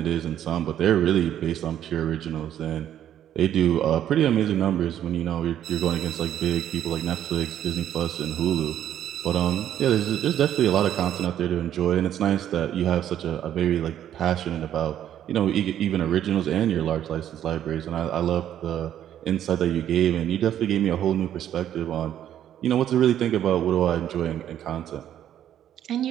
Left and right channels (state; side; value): quieter; left; 10.8 dB